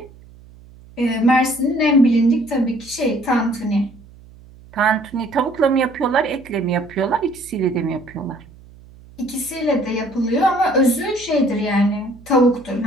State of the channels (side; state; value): right; noise; hum, 23 dB below the sound